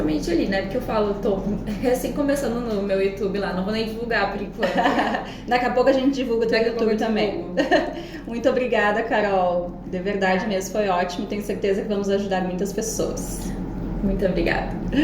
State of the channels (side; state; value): both; identical; correlation 1.00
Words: ali, né? Porque eu falo, tô recém começando no meu YouTube lá, não vou nem divulgar por enquanto. Daqui a pouco a gente divulga o teu YouTube também. Muito obrigada, Carol. De verdade mesmo, foi ótimo. Tenho certeza que vamos ajudar muitas pessoas. Muito obrigada.